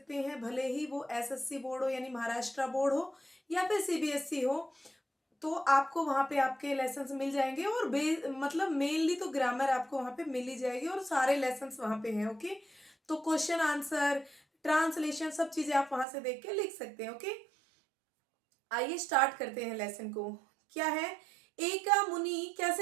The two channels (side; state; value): left; drops out; at 16.1 s